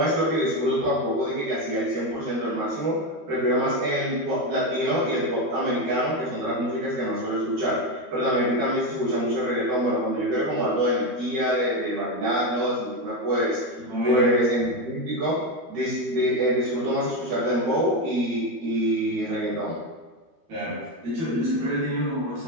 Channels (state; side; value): late; left; 12 ms